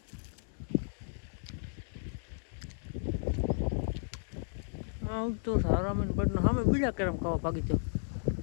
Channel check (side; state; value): right; silent; digital silence